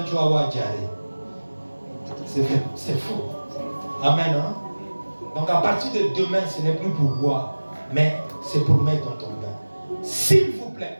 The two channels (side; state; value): both; inverted; correlation -1.00